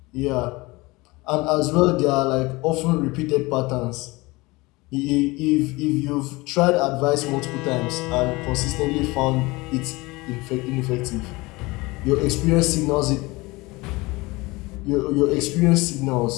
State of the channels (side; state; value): right; quieter; 22.8 dB